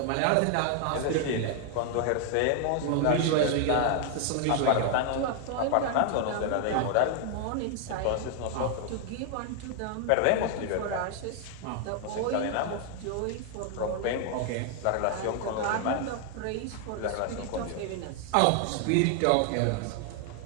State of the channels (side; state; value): both; different; correlation 0.00